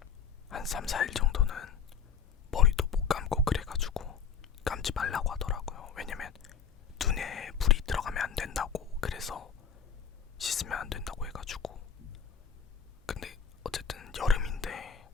한 3, 4일 정도는 머리도 못 감고 그래가지고 감지 말라고 하더라고요. 왜냐면 눈에 불이 들어가면 안 된다고, 그래서 씻으면 안 된다고 해가지고. 근데 어쨌든 여름인데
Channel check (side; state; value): right; quieter; 7.1 dB